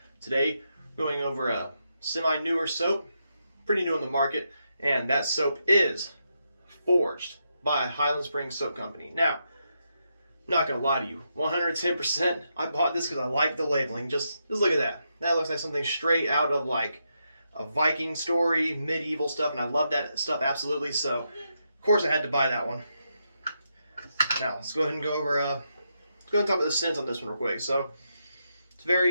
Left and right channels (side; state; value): both; inverted; correlation -0.82